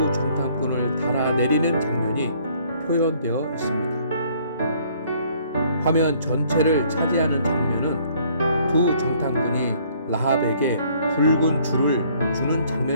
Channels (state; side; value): inverted; both; correlation -0.61